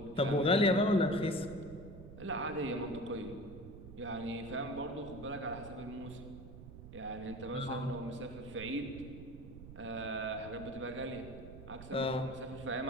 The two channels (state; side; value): noise; right; rumble, 13 dB below the sound